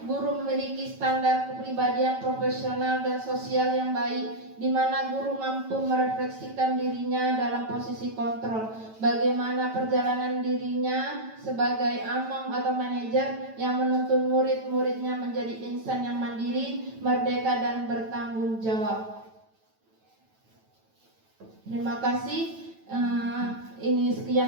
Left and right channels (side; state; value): left; late; 9.1 ms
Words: guru memiliki standar kepribadian profesional dan sosial yang baik, di mana guru mampu merefleksikan dirinya dalam posisi kontrol, bagaimana perjalanan dirinya sebagai among atau manajer yang menuntun murid-muridnya menjadi insan yang mandiri, merdeka dan bertanggung jawab. Terima kasih. Ini